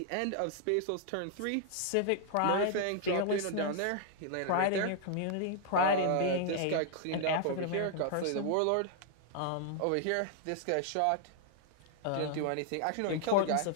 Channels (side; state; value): both; different; correlation -0.01